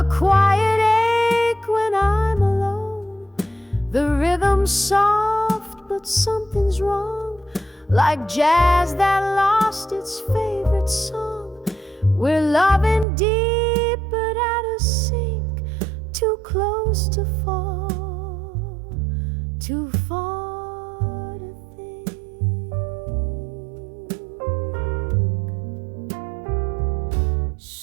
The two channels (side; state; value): left; drops out; at 13.1 s